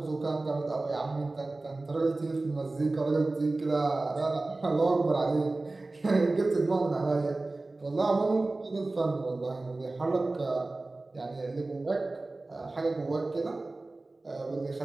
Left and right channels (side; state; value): left; quieter; 3.1 dB